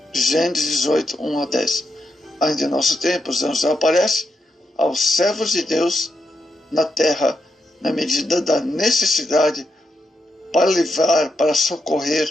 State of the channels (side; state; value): both; normal; correlation 0.83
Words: Gênesis 18, 1 a 10. Ainda em nosso tempo, os anjos aparecem aos servos de Deus na terra, na medida da necessidade, para livrar, para